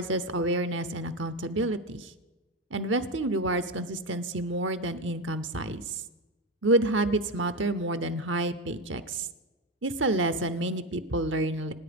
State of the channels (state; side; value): normal; both; correlation 0.14